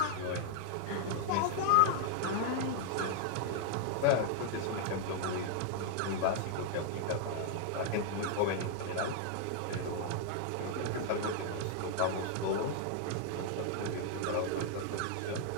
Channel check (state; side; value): different; both; correlation 0.00